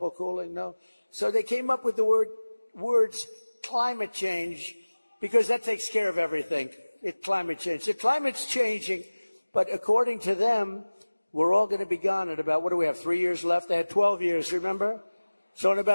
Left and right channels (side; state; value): both; inverted; correlation -1.00